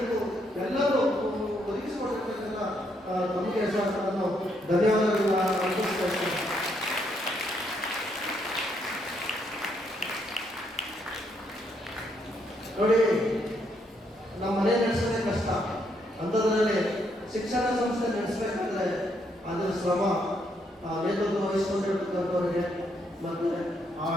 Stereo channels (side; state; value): both; normal; correlation 0.74